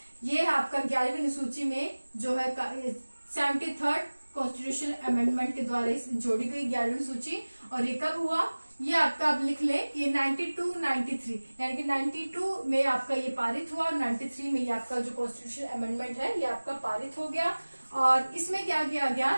ये आपका 11वीं अनुसूची में जो है 73rd कॉन्स्टिट्यूशन अमेंडमेंट के द्वारा जोड़ी गई 11वीं अनुसूची। और ये कब हुआ, ये आपका आप लिख लें कि 92-93 यानी कि 92 में आपका ये पारित हुआ और 93 में ये आपका जो कॉन्स्टिट्यूशन अमेंडमेंट है ये आपका पारित हो गया। और इसमें क्या किया गया,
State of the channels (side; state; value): both; inverted; correlation -1.00